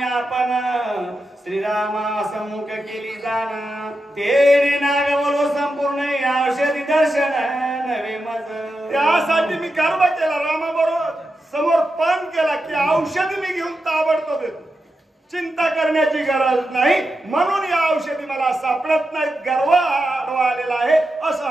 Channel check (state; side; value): normal; both; correlation 0.89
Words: आपण श्रीरामा सम्मुख केली जाण तेने नागवलो संपूर्ण औषधी दर्शन महाराज त्यासाठी मी गर्व केला रामाबरोबर समोर पान केला की औषधी मी घेऊन ताबडतोब येतो. चिंता करण्याची गरज नाही म्हणून या औषधी मला सापडत नाहीत. गर्व आडवा आलेला आहे असं